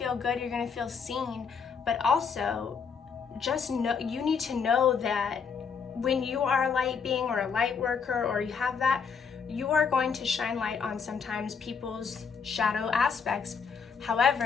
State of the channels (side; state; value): right; quieter; 6.1 dB